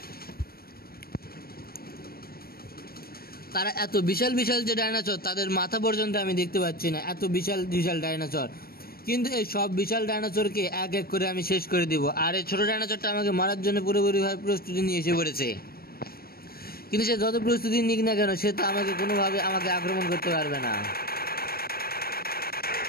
তারা এত বিশাল বিশাল যে ডাইনোসর, তাদের মাথা পর্যন্ত আমি দেখতে পাচ্ছি না, এত বিশাল বিশাল ডাইনোসর। কিন্তু এই সব বিশাল ডাইনোসরকে এক এক করে আমি শেষ করে দিব। আর এই ছোট ডাইনোসরটা আমাকে মারার জন্য পুরোপুরিভাবে প্রস্তুতি নিয়ে এসে পড়েছে। কিন্তু সে যত প্রস্তুতি নিক না কেন, সে তো আমাকে কোনোভাবে আক্রমণ করতে পারবে না।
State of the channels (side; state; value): right; late; 0.44 ms